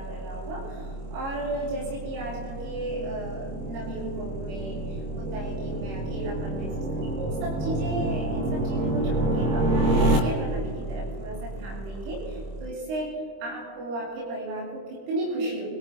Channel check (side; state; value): left; late; 26 ms